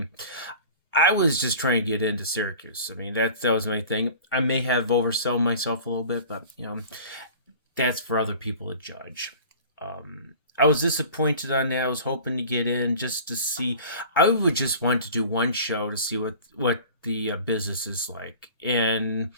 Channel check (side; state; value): both; inverted; correlation -0.42